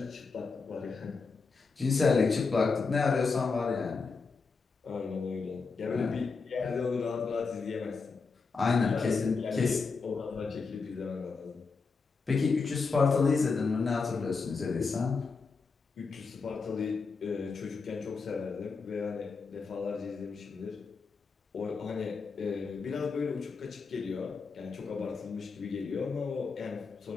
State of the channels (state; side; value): quieter; right; 4.7 dB